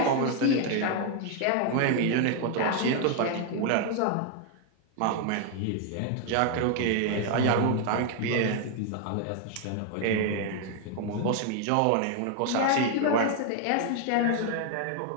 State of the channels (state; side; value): different; both; correlation 0.01